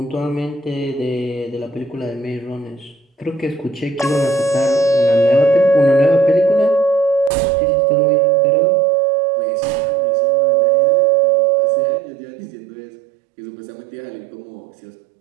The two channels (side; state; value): left; drops out; at 7.3 s